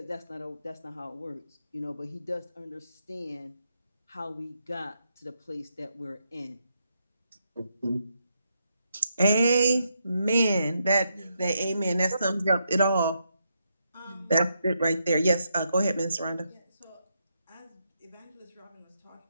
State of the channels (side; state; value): both; inverted; correlation -0.81